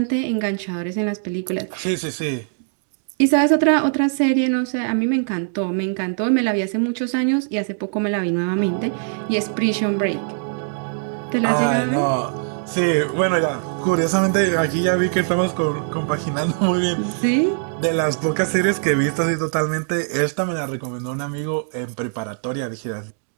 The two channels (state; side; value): silent; left; digital silence